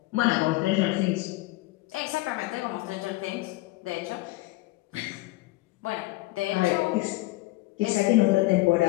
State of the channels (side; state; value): right; quieter; 20.2 dB